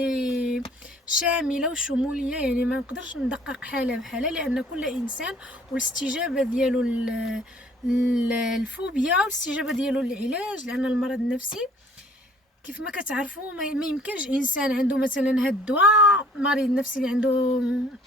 شاملة وشمولية، يعني ما نقدرش ندقق حالة بحالة، لأن كل إنسان والاستجابة ديالو الفوبيا والاستجابة ديالو للعلاج، لأن المرض النفسي كيف ما كتعرفوا ما يمكنش انسان عنده مثلا هاد الدواء، مريض نفسي اللي عنده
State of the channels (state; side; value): normal; both; correlation 0.56